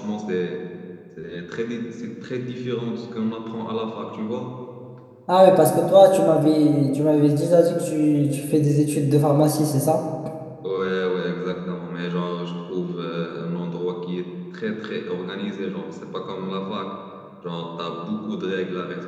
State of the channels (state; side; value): identical; both; correlation 1.00